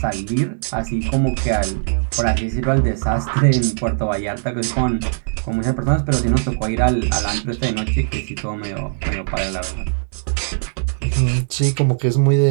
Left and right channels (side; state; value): left; silent; digital silence